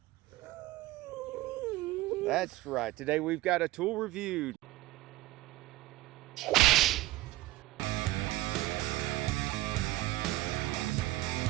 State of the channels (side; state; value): left; quieter; 17.2 dB